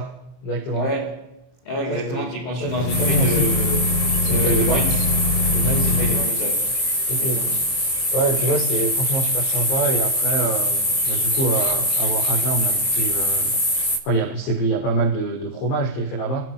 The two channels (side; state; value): right; late; 23 ms